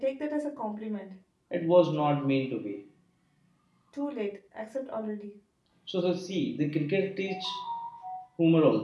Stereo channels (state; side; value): identical; both; correlation 1.00